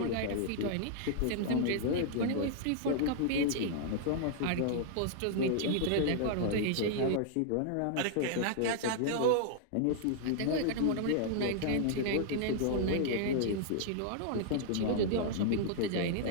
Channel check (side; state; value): both; different; correlation -0.01